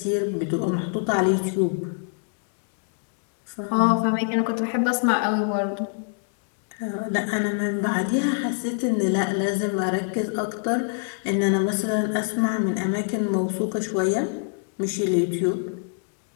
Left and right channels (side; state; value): right; silent; 62 dB below the other